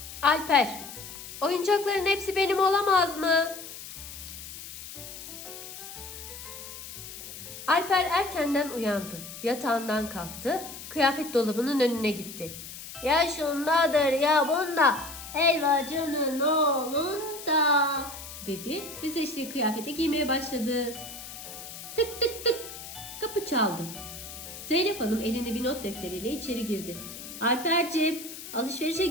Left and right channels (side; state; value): left; noise; hiss, 12 dB below the sound